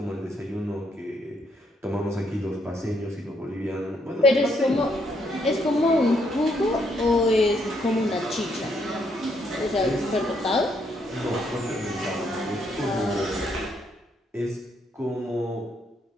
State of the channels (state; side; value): normal; both; correlation 0.73